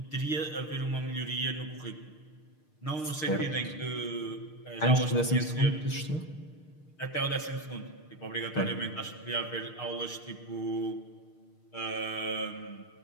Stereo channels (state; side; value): late; right; 6.5 ms